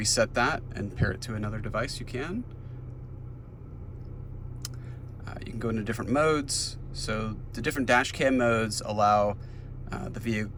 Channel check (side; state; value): both; identical; correlation 1.00